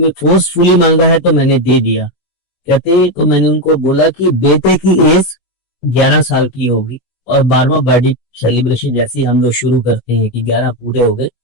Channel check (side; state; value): right; late; 16 ms